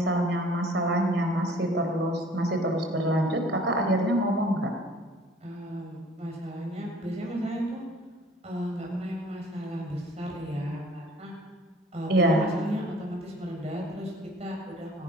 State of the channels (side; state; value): both; normal; correlation 0.52